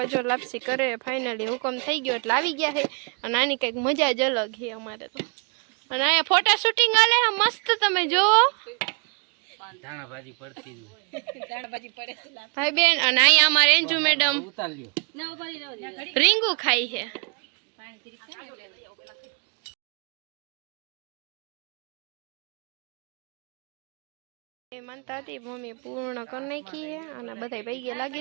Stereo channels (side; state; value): left; quieter; 36.8 dB